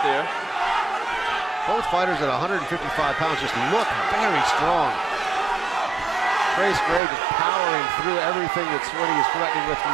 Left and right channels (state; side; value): drops out; left; at 7.0 s